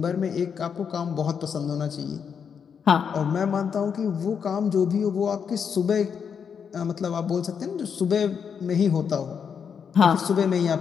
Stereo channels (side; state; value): right; quieter; 6.9 dB